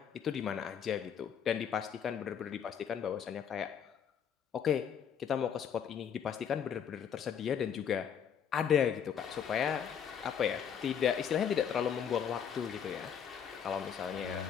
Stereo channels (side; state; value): right; quieter; 7.9 dB